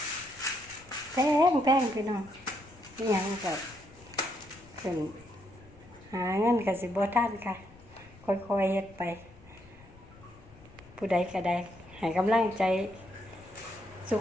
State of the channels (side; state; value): left; noise; rumble, 23 dB below the sound